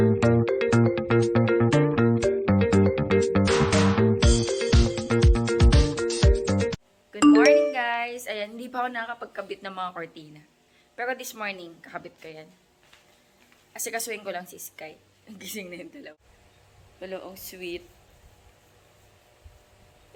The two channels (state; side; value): identical; both; correlation 1.00